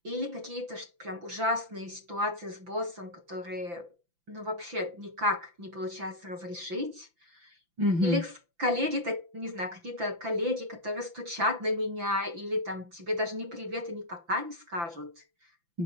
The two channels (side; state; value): left; late; 5.9 ms